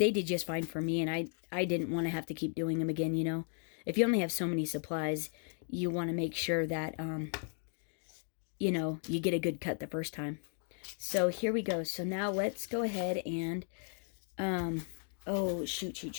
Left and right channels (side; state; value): right; silent; 54 dB below the other